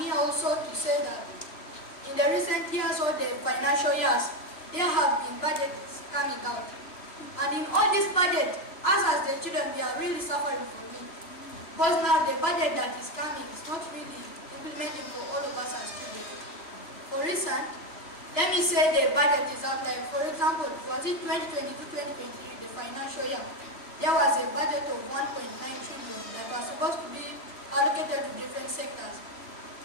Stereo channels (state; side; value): late; right; 3.1 ms